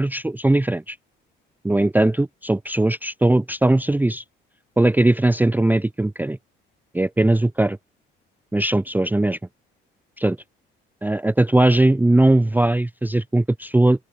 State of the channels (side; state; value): both; normal; correlation 0.96